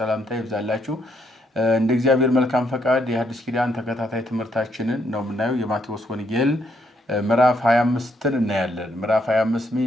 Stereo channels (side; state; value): both; normal; correlation 0.74